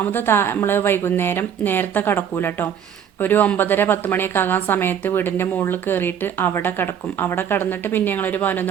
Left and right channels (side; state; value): left; quieter; 8.6 dB